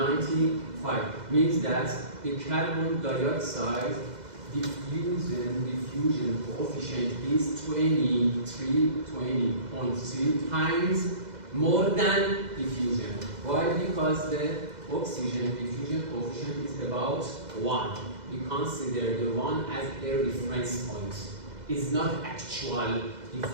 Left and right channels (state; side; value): late; left; 2.0 ms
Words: Means that the carbon dioxide diffusion coefficient is 20.3 times more than diffusion. Why? Because the oxygen diffusion coefficient is about 1. We consider the 1 as a reference point. It's not actual